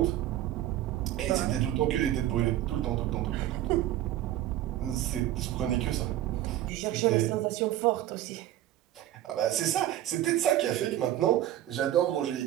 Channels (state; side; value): quieter; left; 13.3 dB